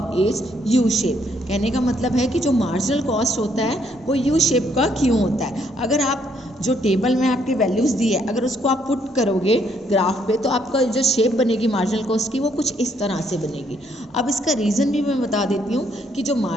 is U shape. कहने का मतलब है कि जो मार्जिनल कॉस्ट होता है वो यू शेप का क्यों होता है। अगर आप जो टेबल में आपकी वैल्यूज़ दी है अगर उसको आप पुट करोगे ग्राफ पे, तो आपका जो शेप बनेगी मार्जिनल कॉस्ट की वो कुछ इस तरह से बनेगी। अब इसका रीज़न भी मैं बता देती हूँ कि जो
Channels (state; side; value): normal; both; correlation 0.70